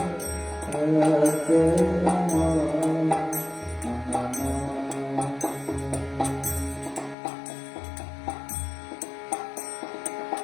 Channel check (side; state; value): right; drops out; at 7.2 s